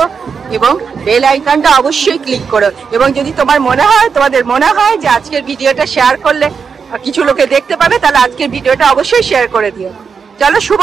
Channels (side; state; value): left; quieter; 5.9 dB